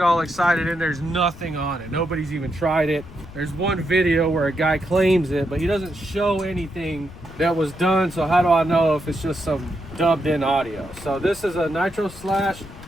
all excited and there's nothing on it. Nobody's even tried it. There's one video where a guy claims it, but he doesn't show anything that was done. So how do I know if it's just some dubbed in audio? So this is a Nitro Slash.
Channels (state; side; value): noise; left; rumble, 17 dB below the sound